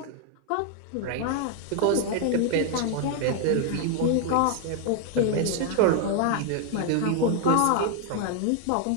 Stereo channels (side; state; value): both; different; correlation 0.00